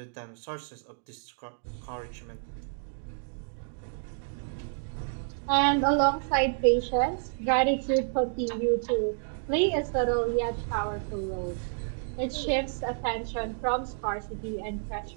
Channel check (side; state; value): left; silent; digital silence